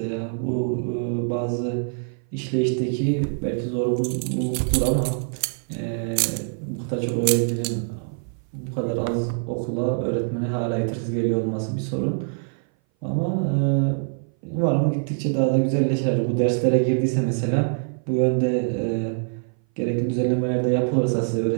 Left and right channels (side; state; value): left; silent; 58 dB below the other